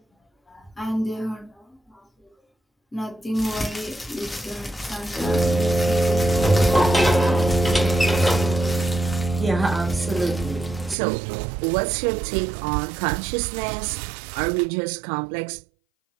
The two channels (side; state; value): left; drops out; at 11.0 s